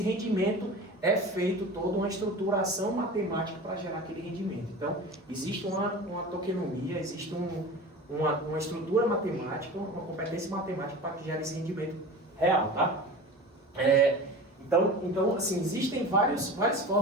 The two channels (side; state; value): both; normal; correlation 0.34